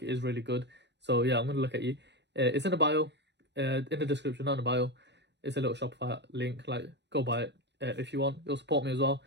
it is really good. So yeah, I'm going to look at you. It's in the bio, in the description, not in the bio. It's a little Shopify link. Like, go buy it if you want. It'll support me as well.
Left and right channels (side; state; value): left; late; 0.51 ms